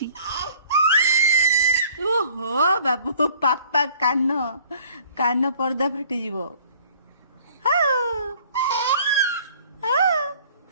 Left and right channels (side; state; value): both; inverted; correlation -0.53